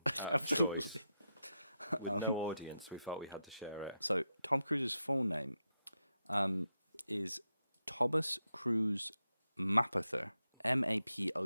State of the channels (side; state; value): both; inverted; correlation -0.87